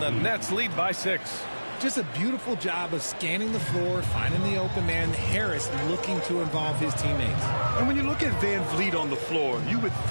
the Nets lead by 6. Just a beautiful job of scanning the floor, finding the open man. Harris looking to involve his teammates. And when you look at Van Vliet on the floor, you would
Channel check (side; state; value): both; inverted; correlation -1.00